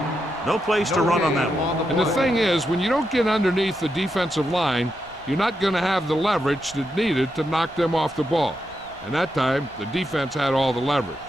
No place to run on that one. And the thing is, when you don't get underneath the defensive line, you're not going to have the leverage that's needed to knock them off the ball. And that time, the defense had all the leverage.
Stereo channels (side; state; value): left; noise; rumble, 26 dB below the sound